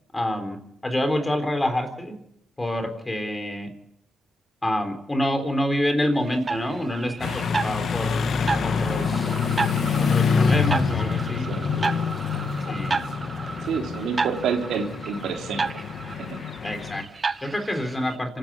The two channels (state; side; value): normal; both; correlation 0.81